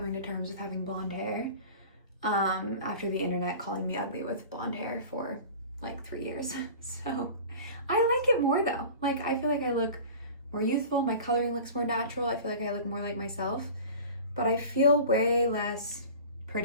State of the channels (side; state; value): both; inverted; correlation -0.39